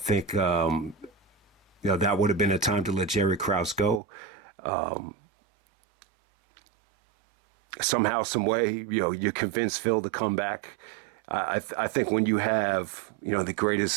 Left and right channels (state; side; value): drops out; left; at 4.0 s